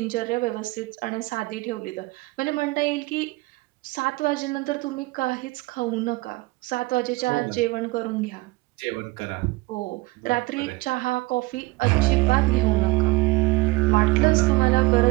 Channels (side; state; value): left; quieter; 21.2 dB